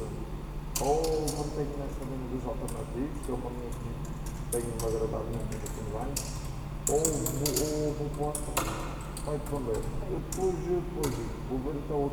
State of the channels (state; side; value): identical; both; correlation 1.00